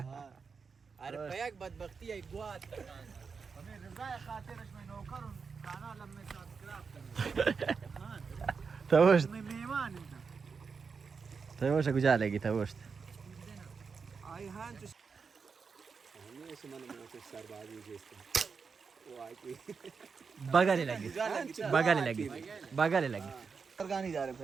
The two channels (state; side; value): quieter; left; 5.4 dB